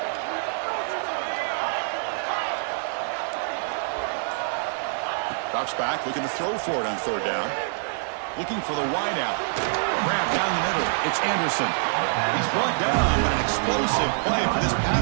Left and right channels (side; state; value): left; silent; digital silence